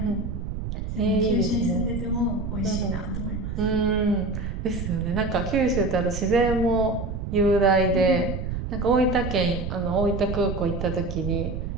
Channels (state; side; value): noise; right; rumble, 5 dB below the sound